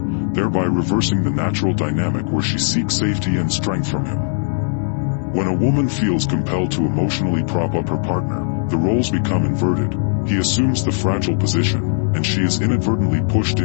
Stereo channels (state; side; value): silent; right; 60 dB below the other